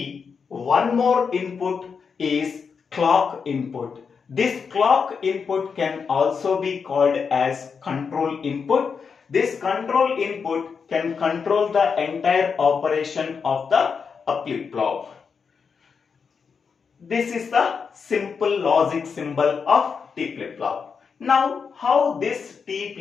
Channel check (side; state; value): right; quieter; 5.8 dB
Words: one more input is clock input. This clock input can also be called as control input. This control input can control the entire operation of the flip-flop. This is the simple logic symbol of T flip-flop. Now, how this T